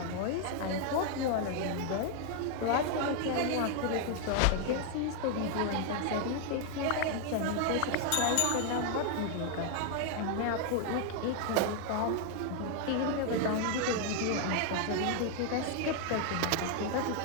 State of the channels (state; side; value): different; both; correlation 0.00